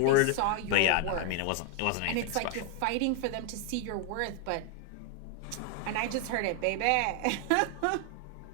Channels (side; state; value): both; different; correlation 0.00